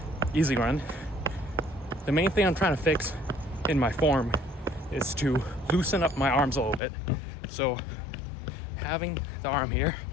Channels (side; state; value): right; drops out; at 6.8 s